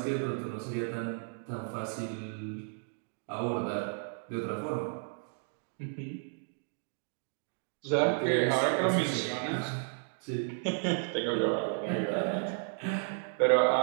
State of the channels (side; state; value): left; silent; 55 dB below the other